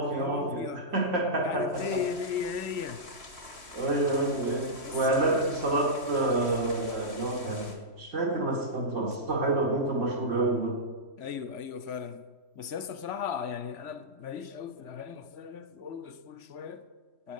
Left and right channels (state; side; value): late; left; 3.1 ms